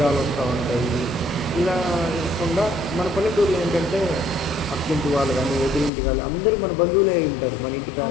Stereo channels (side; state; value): right; drops out; at 5.9 s